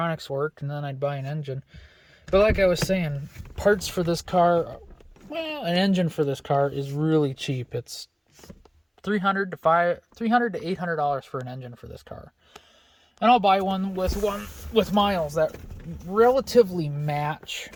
worked, and then I'd buy an engine. But like I was saying, parts for this car, an engine for this car is really cheap. It's $300 to $800 for an engine for this car. And I'll buy one with miles that relatively match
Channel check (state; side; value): identical; both; correlation 1.00